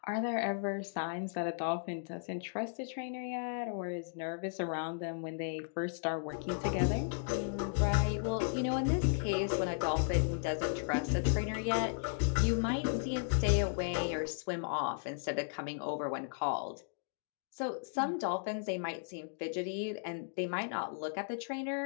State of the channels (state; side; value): silent; right; digital silence